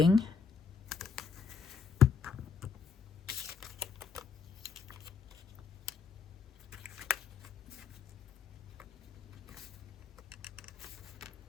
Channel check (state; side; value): quieter; right; 5.8 dB